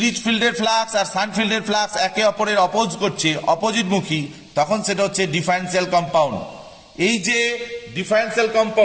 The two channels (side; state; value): both; identical; correlation 1.00